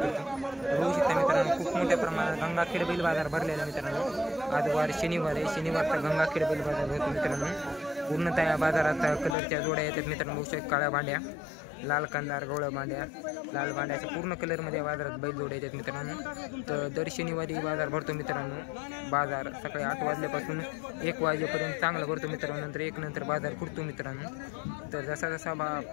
बघू शकता मित्रांनो, खूप मोठ्या प्रमाणात गंगाखेड बैल बाजार भरलेला मित्रांनो। आज वार शनिवार आहे, शनिवारचा गंगाखेड बैल बाजार भरतो मित्रांनो। पूर्णतः या बाजारात कलरच्या जोड्या येतात मित्रांनो। बघू शकता काळ्या भांड्या, लाल कंदार, गवळ्या भांड्या, लाल भांड्याच्या पूर्ण कलरमध्ये बाजारात बैल जोड्या येतात मित्रांनो। तर दर शनिवारी बाजार भरतो मित्रांनो। बाजार सकाळी 8 वाजल्यापासून 1 वाजेपर्यंत चांगला भरतो मित्रांनो। नंतर 1 नंतर बाजार फुटतो मित्रांनो। तर जसा जसा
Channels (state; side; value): drops out; right; at 9.3 s